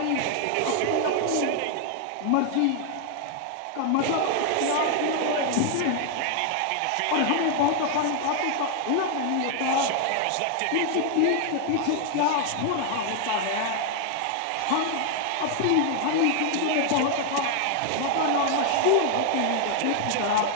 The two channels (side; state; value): both; different; correlation 0.00